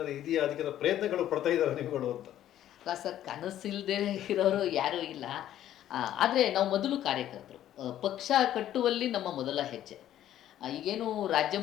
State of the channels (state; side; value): quieter; right; 12.0 dB